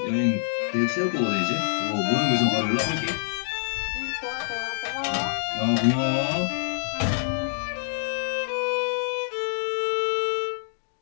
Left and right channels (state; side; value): silent; right; digital silence